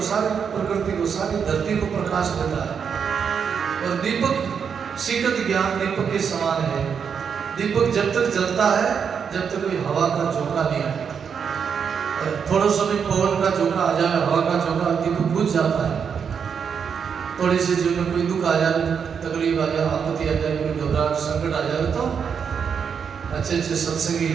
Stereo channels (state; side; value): quieter; left; 6.8 dB